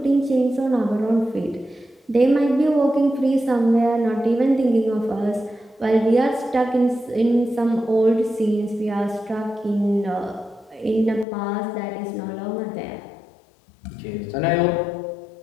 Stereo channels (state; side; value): drops out; right; at 11.2 s